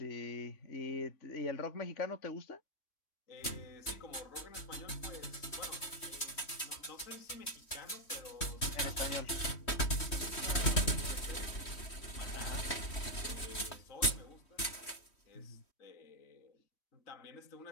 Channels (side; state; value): right; late; 3.1 ms